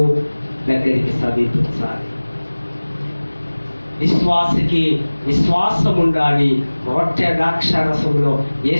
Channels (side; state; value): both; inverted; correlation -1.00